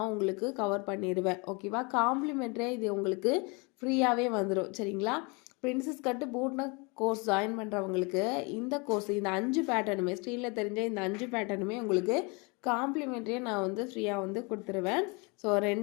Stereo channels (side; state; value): right; quieter; 30.0 dB